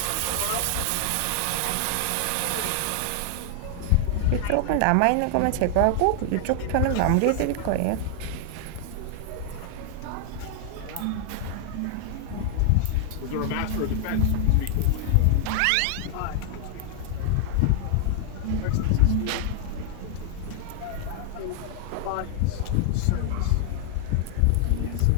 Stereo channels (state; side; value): different; both; correlation 0.00